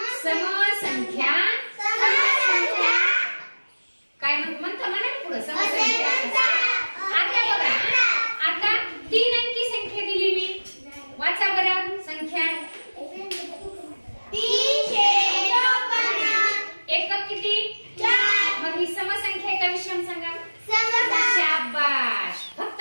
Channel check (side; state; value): both; inverted; correlation -1.00